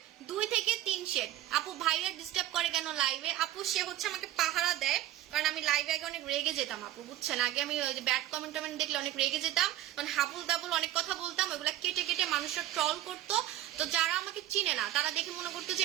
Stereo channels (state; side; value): quieter; left; 13.6 dB